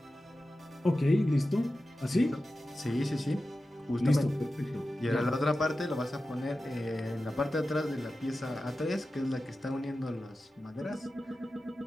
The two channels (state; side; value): normal; both; correlation 0.93